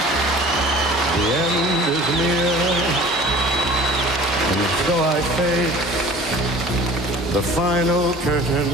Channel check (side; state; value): both; normal; correlation 0.46